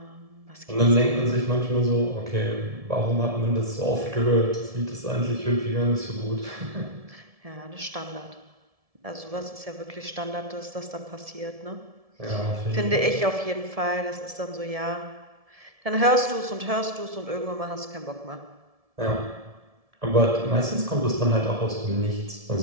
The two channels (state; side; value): late; left; 1.7 ms